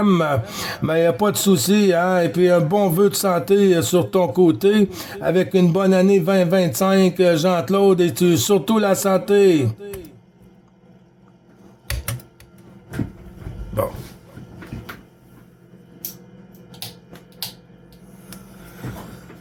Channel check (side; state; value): both; identical; correlation 1.00